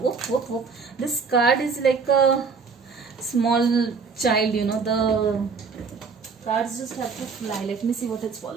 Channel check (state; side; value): quieter; left; 5.2 dB